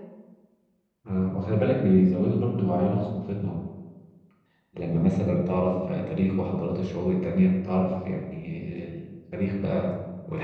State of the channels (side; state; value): both; identical; correlation 1.00